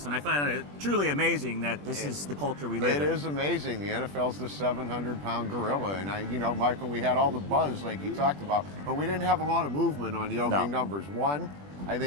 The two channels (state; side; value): late; left; 21 ms